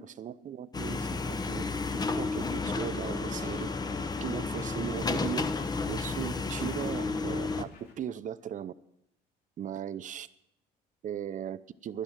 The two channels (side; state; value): both; normal; correlation 0.56